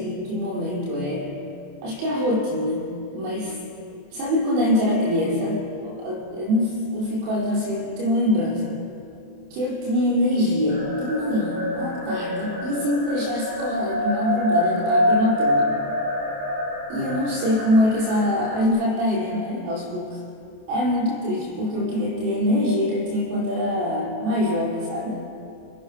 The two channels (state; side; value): late; left; 28 ms